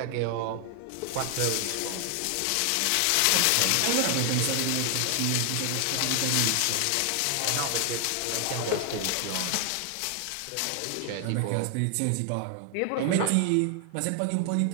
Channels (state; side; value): different; both; correlation 0.00